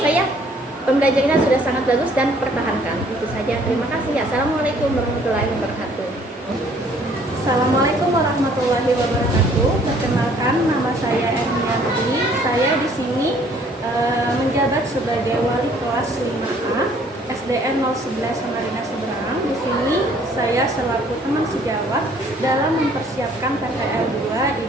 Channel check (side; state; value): both; normal; correlation 0.59